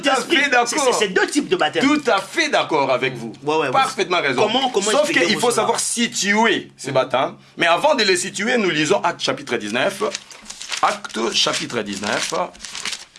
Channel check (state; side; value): identical; both; correlation 1.00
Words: C'est deux types de baptême. Tout à fait d'accord avec vous. Parfaitement raison. Sauf qu'il faut savoir situer ces baptêmes. Mais avant de les situer, nous lisons Actes chapitre 19. Actes chapitre 19.